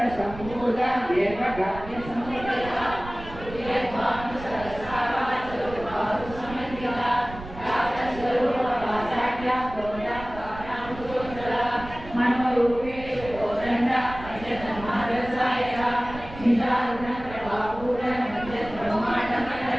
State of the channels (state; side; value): noise; right; rumble, 14 dB below the sound